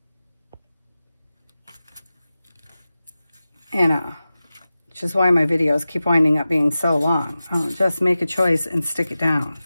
And, which is why my videos keep winding up being so long. I'll just make a choice and stick it down.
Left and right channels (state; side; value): inverted; both; correlation -0.95